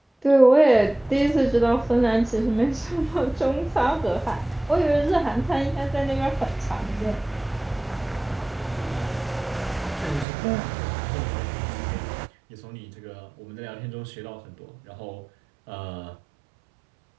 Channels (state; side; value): drops out; left; at 10.2 s